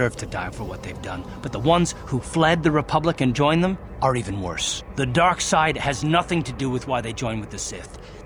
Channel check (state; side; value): identical; both; correlation 1.00